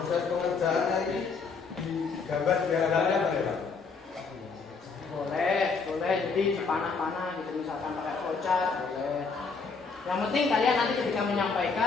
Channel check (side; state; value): right; quieter; 4.9 dB